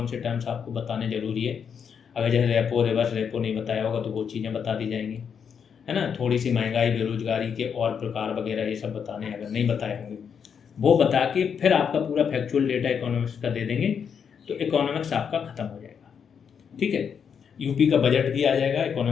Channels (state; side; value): quieter; right; 7.1 dB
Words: से टर्म्स आपको बताने जरूरी है। अगर जैसे रेपो, रिवर्स रेपो नहीं बताया होगा तो वो चीज़ें बता दी जाएंगी, है ना। थोड़ी सी महंगाई, बेरोजगारी के और प्रकार वगैरह ये सब बताने, अगर नहीं बताए होंगे वो बता के फिर आपका पूरा फैक्चुअल डेटा इकोनॉमिक्स का दे देंगे, तो इकोनॉमिक्स आपका खत्म हो जाएगा। ठीक है, यूपी का बजट भी आ जाएगा,